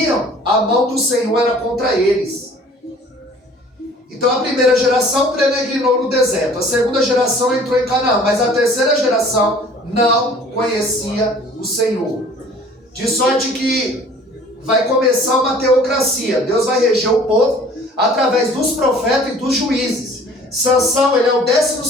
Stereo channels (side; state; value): both; normal; correlation 0.50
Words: a mão do Senhor era contra eles. Então a primeira geração peregrinou no deserto, a segunda geração entrou em Canaã, mas a terceira geração não conhecia o Senhor. De sorte que vai começar uma teocracia. Deus vai reger o povo através dos profetas e dos juízes. Sansão, ele é o